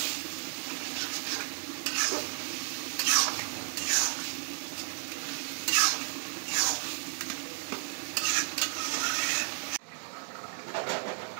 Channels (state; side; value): silent; left; digital silence